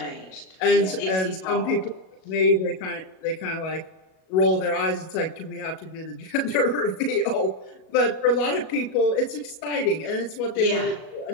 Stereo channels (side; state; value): right; late; 37 ms